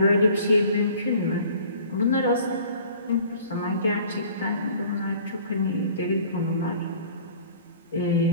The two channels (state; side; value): inverted; both; correlation -0.49